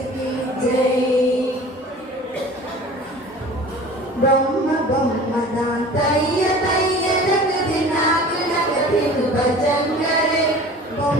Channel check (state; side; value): normal; both; correlation 0.43